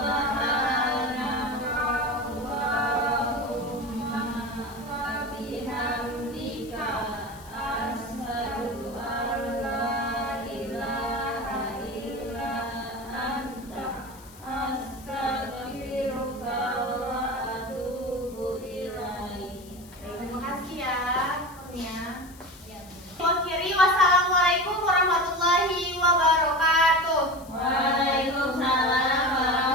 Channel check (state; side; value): noise; left; hiss, 22 dB below the sound